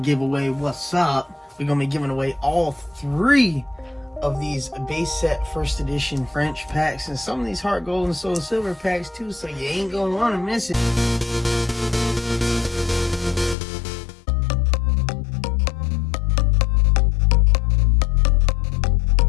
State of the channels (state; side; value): drops out; right; at 13.6 s